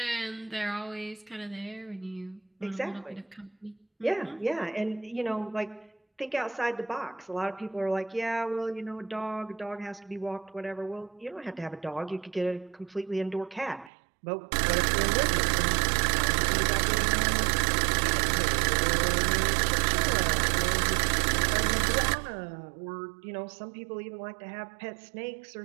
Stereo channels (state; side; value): drops out; left; at 13.9 s